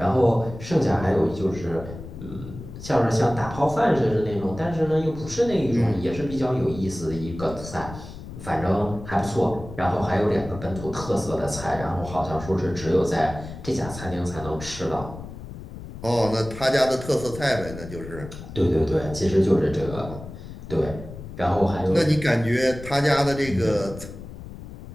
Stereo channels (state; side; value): noise; left; rumble, 12 dB below the sound